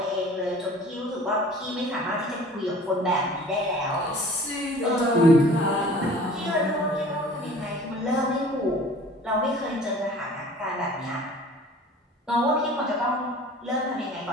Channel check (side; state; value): both; normal; correlation 0.46